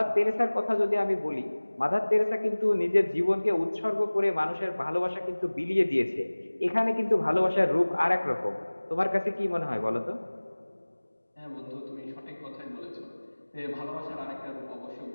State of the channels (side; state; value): both; inverted; correlation -1.00